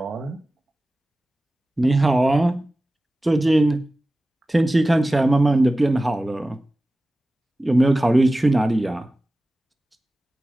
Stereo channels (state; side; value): normal; both; correlation 0.96